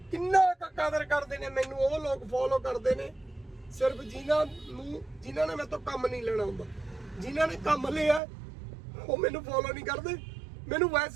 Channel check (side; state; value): left; drops out; at 8.2 s